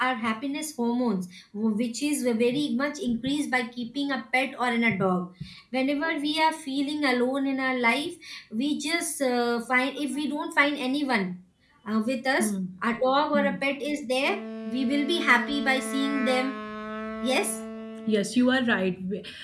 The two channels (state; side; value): identical; both; correlation 1.00